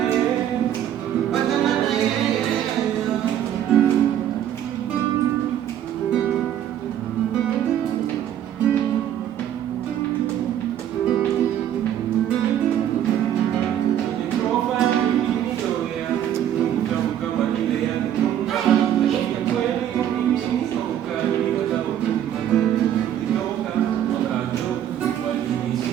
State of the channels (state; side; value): quieter; left; 10.6 dB